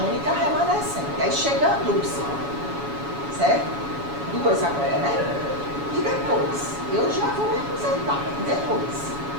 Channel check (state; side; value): late; left; 7.1 ms